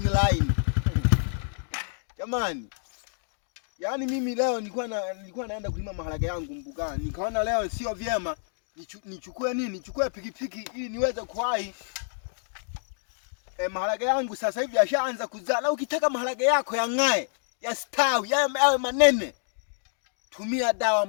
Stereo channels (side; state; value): right; silent; digital silence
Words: line. Jamani. Yaani mimi leo nilikuwa naenda kulima maharage yangu mbugani. Nikaona leo sio vyema nichukue nini? Nichukue pikipiki ili niweze kuwahi. Maharage yangu sasa hivi yashaanza kuzaa. Na ukitaka maharage yako yang'ae, yastawi, yawe manene, tumia dawa